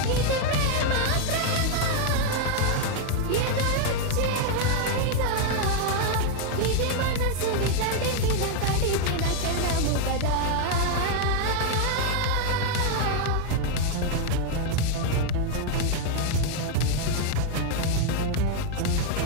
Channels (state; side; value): different; both; correlation 0.00